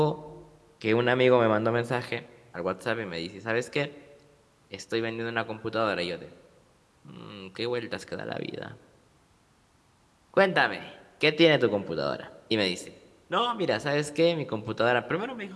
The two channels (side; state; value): both; identical; correlation 1.00